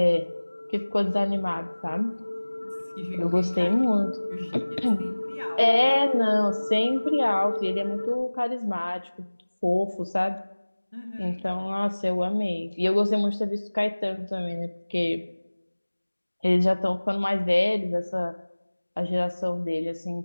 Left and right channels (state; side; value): inverted; both; correlation -1.00